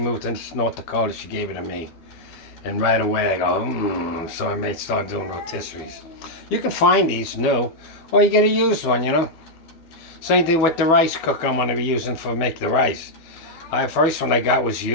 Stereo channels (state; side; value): late; right; 12 ms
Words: to North Dakota, she gave it to me. And right away I go, so I may start doing rotisseries. You can find these new, or you get a used one, you know. Same thing with the rice cooker I'm going to be using for make the rice. The first one I got was